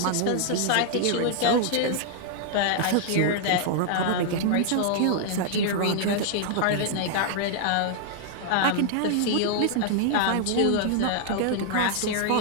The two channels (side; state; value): both; different; correlation -0.01